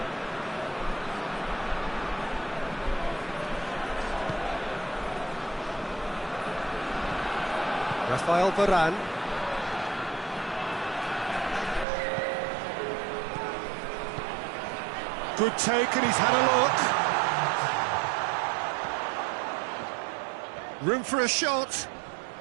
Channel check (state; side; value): drops out; left; at 11.9 s